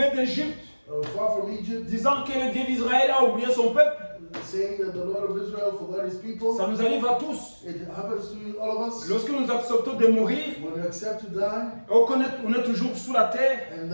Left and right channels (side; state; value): both; inverted; correlation -1.00